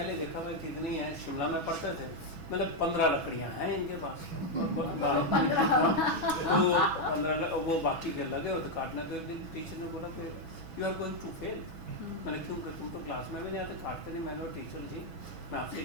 देखा भाई कितनी है, शिमला में पढ़ते थे, मतलब 15 लकड़ियाँ हैं इनके पास, तो 15 वो बाकी के लगे और तो काटना, तो एक दिन टीचर ने बोला कि you are going to fail. मैंने क्यों, तुम तो क्लास में भी नहीं आते, काटते नहीं। मैंने टीचर जी मैं आपसे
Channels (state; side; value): late; left; 6.1 ms